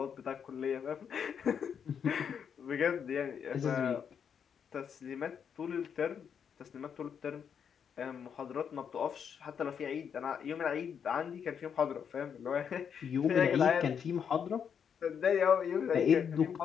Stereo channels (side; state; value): right; quieter; 7.5 dB